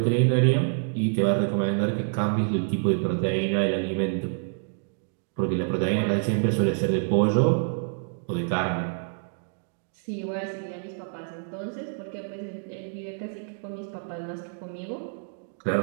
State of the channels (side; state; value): left; silent; digital silence